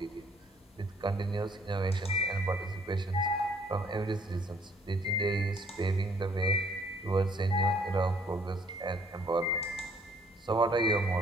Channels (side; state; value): both; normal; correlation 0.62